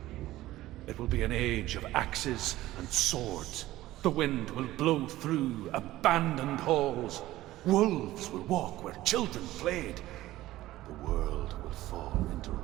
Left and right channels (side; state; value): left; quieter; 16.0 dB